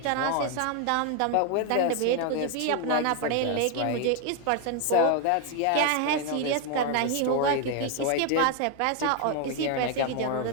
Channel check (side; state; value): both; different; correlation 0.01